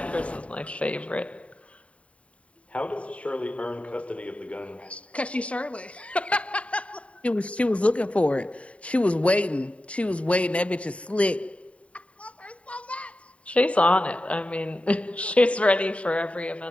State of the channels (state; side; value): late; right; 0.064 ms